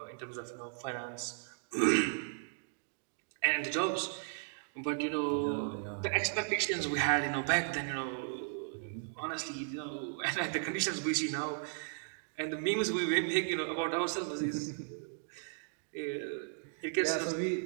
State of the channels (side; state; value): left; silent; digital silence